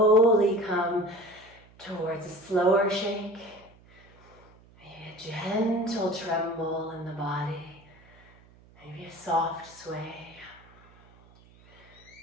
come towards a slower shake. Maybe a gentle tremble in the body. Maybe a soft sway.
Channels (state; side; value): noise; right; hum, 26 dB below the sound